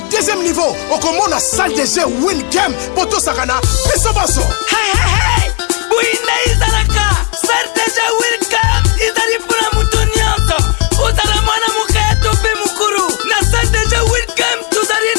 deuxième niveau, on commence la salle de jeu Win Game, Poto Sakana, Pesobaso. Hey hey hey, Bouina Izalaka, salle de jeu Win Game, Izali pour la moutoniante, Uzala Mwana Mukaya Tope Mukuru, la salle de jeu Win Game, Tuzali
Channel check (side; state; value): right; quieter; 36.1 dB